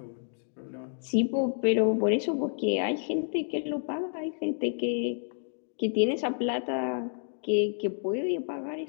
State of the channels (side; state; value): right; silent; digital silence